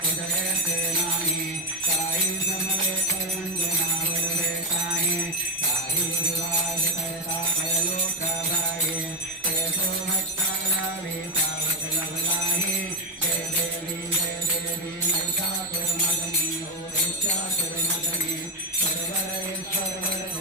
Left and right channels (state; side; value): normal; both; correlation 0.08